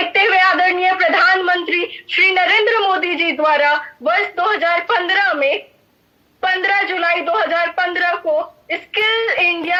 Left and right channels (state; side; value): identical; both; correlation 1.00